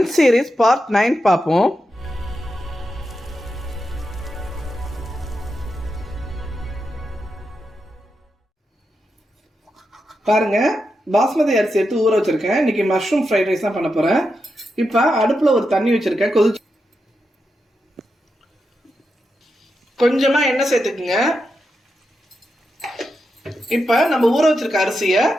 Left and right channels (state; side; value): normal; both; correlation 0.87